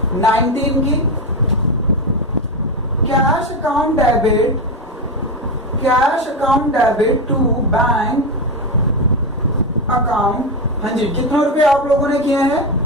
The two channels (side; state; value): both; normal; correlation 0.14